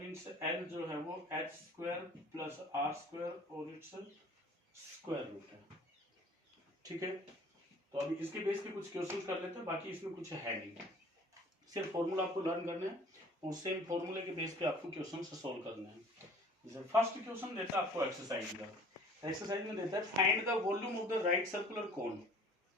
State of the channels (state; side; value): normal; both; correlation 0.49